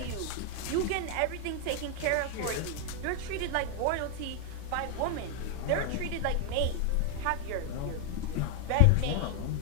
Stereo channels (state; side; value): different; both; correlation 0.00